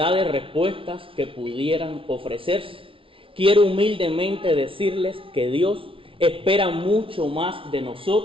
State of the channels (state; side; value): late; left; 0.25 ms